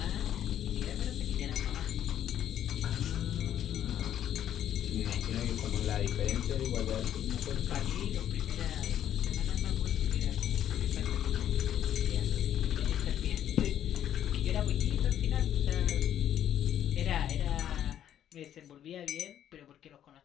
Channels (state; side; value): quieter; right; 10.6 dB